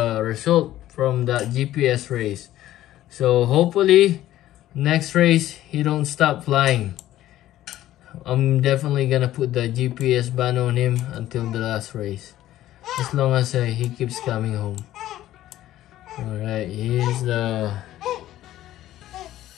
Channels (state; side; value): quieter; right; 13.8 dB